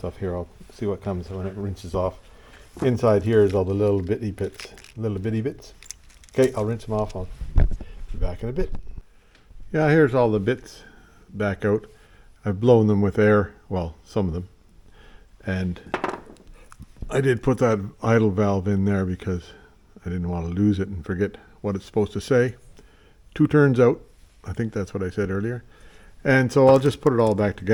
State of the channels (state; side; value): identical; both; correlation 1.00